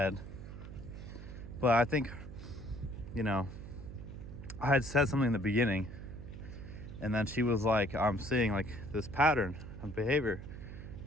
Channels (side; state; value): right; noise; hum, 11 dB below the sound